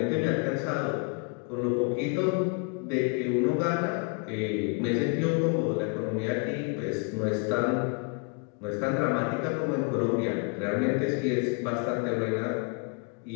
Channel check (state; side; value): quieter; right; 34.6 dB